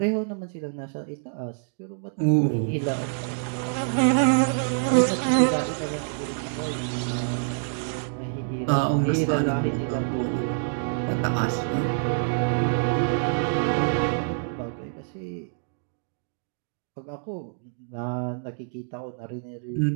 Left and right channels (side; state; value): left; silent; digital silence